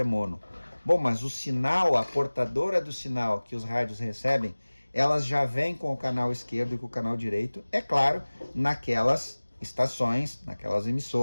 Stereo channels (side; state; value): both; inverted; correlation -1.00